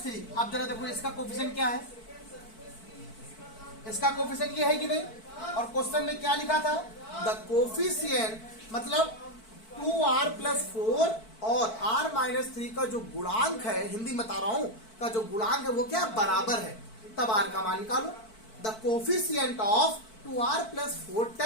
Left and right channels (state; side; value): late; right; 4.5 ms